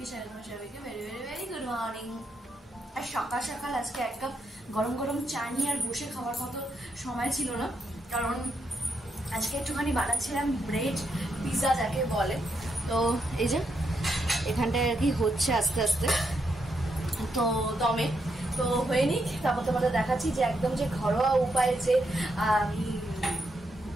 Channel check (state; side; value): normal; both; correlation 0.80